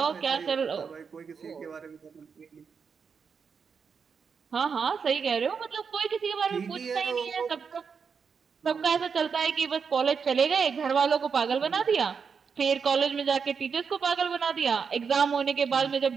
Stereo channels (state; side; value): quieter; left; 6.0 dB